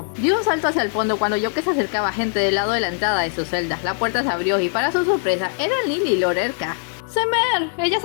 Dio un salto hacia el fondo cuando oyó que se acercaba gente del lado de la entrada de su celda. La puerta se abrió y para su sorpresa eran Lily y Lorelka. ¡Semer! Ella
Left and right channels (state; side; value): silent; right; 65 dB below the other